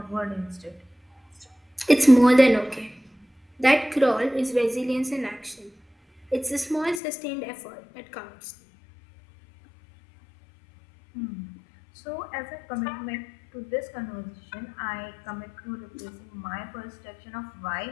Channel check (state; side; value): drops out; right; at 7.0 s